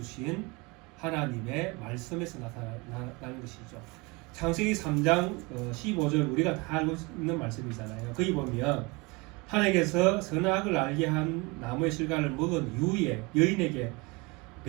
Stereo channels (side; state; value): left; quieter; 26.3 dB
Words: 하나님의 말씀에서 나타나는 것이죠. 창세기 3장 15절 우리가 다 알고 있는 말씀이잖아요. 거기 보면 하나님께서 선악을 알게 한 나무의 실과를 먹은 이후에 여인에게